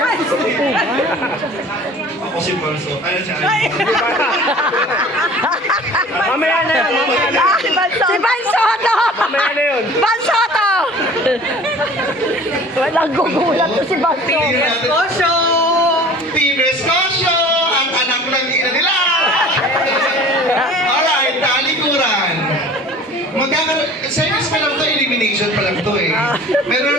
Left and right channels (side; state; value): both; normal; correlation 0.45